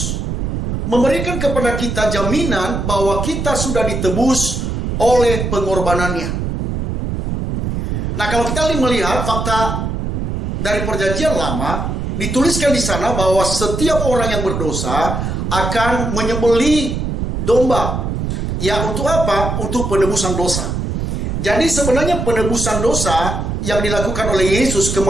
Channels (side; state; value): right; noise; rumble, 2 dB below the sound